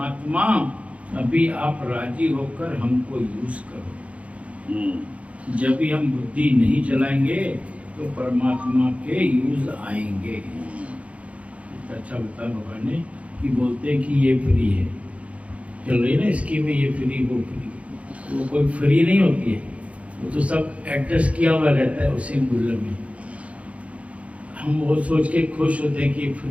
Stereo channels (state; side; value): late; left; 0.064 ms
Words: अभी आप राजी होकर हमको यूज करो। जब भी हम बुद्धि नहीं चलाएंगे तो परमात्मा के यूज आएंगे। अच्छा बता भगवान ने कि बोलते हैं कि ये फ्री है, चल रही ना स्कीम में, ये फ्री वो फ्री। वो कोई फ्री नहीं होती है, वो तो सब एडजस्ट किया हुआ रहता है उसी मूल्य में। हम वो सोच के खुश होते हैं कि